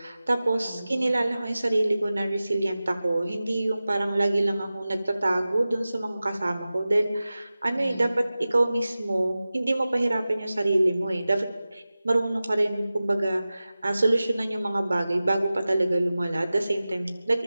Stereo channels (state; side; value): inverted; both; correlation -0.96